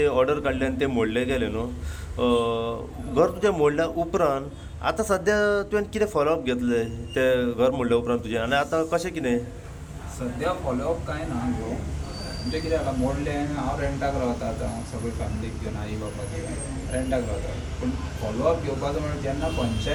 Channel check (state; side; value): identical; both; correlation 1.00